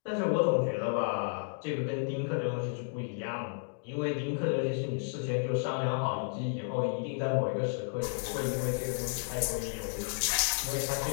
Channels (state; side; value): silent; right; digital silence